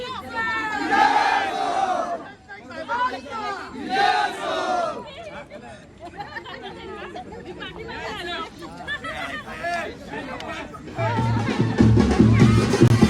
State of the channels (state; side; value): identical; both; correlation 1.00